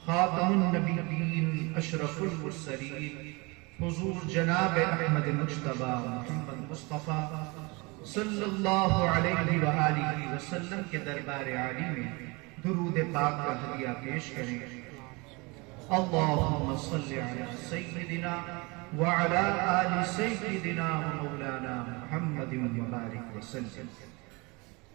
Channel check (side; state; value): left; quieter; 27.0 dB